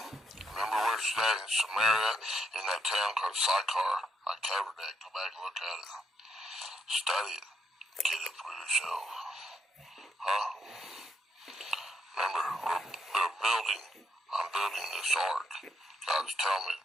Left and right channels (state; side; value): normal; both; correlation 0.76